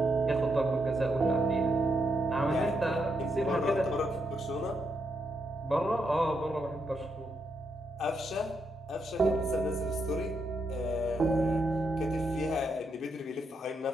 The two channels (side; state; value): both; normal; correlation 0.80